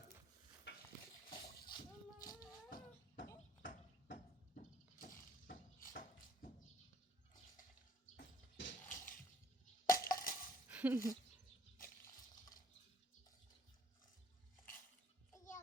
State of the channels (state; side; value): normal; both; correlation 0.61